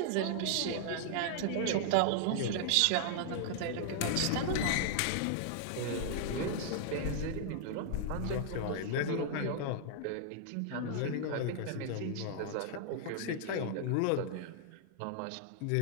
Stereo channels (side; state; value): both; different; correlation -0.01